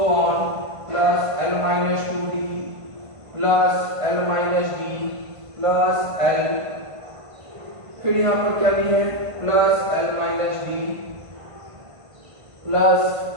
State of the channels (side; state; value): left; late; 1.5 ms